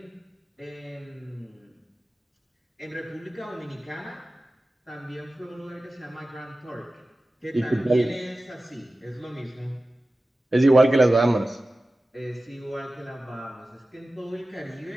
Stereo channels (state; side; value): normal; both; correlation 0.95